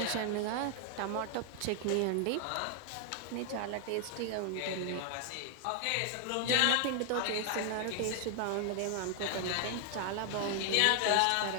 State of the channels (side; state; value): both; different; correlation 0.00